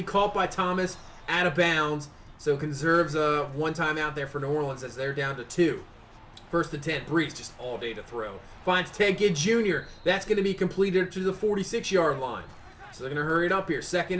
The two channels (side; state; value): both; identical; correlation 1.00